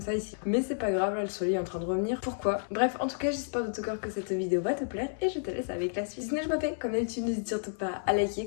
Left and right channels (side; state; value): right; silent; 57 dB below the other